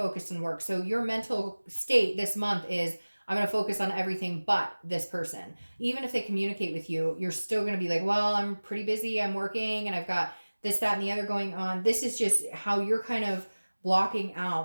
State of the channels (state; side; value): inverted; both; correlation -1.00